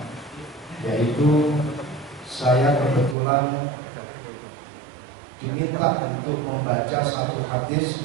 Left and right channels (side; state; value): left; drops out; at 3.2 s